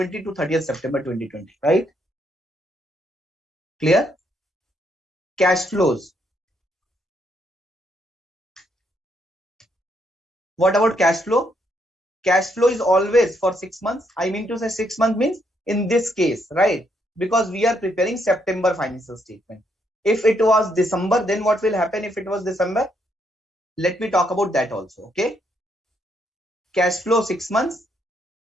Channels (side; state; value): both; normal; correlation 0.74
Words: to 30th September 2020, right? Clear? Cash flows. What about cash flow? Cash flow is always for 6 months. I mean to say 6 months means in this case, right? Because we are preparing September financial statement. If it was December, then what will happen if it was December? Let me talk about that also, okay? Cash flow 6 months.